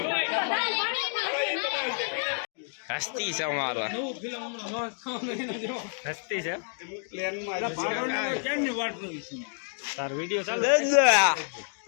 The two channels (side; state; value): right; silent; 59 dB below the other